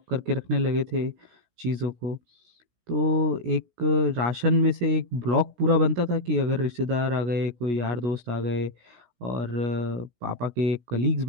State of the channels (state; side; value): late; left; 17 ms